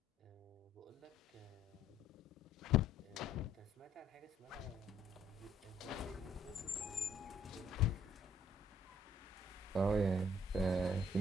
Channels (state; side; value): normal; both; correlation 0.63